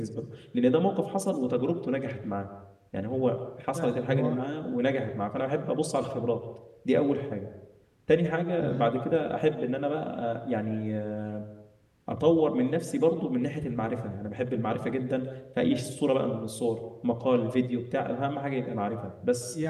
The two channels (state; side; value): identical; both; correlation 1.00